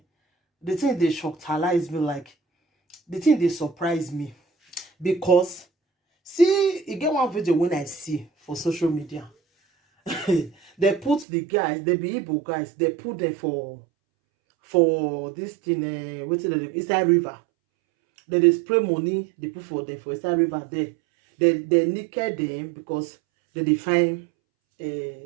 the thing they shocktalize me, like the thing they surprise me, because see, you get one video when I see for social media. They put the guys, they be Igbo guys, they put them for this thing, what's it, inside river. They spray money, they put for them for inside river there. They naked them because they find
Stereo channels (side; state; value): left; drops out; at 11.2 s